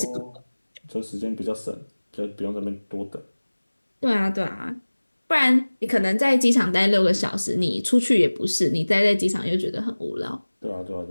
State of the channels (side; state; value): both; inverted; correlation -1.00